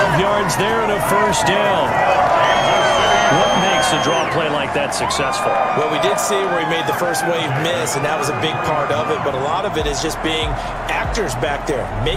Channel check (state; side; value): identical; both; correlation 1.00